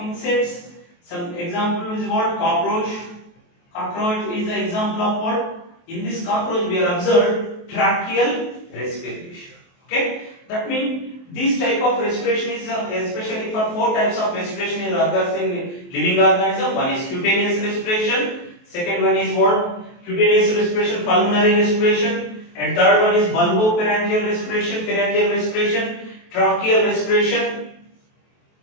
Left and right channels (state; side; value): late; right; 23 ms